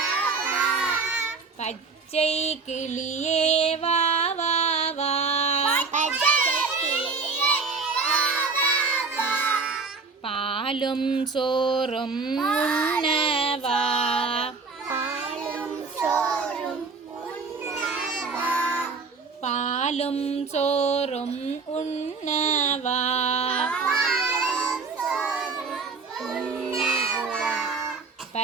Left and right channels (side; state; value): left; quieter; 4.6 dB